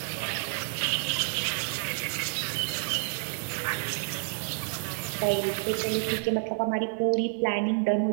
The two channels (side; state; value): left; silent; 59 dB below the other